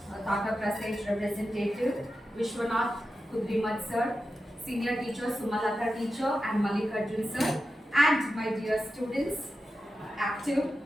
Tata Prasage representative, Vishwanath Kudrimat sir, senior teacher Sumalata teacher and Mallikarjun sir, and my dear students, active,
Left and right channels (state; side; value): normal; both; correlation 0.91